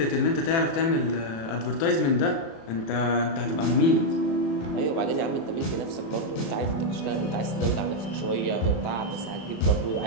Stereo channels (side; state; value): right; late; 36 ms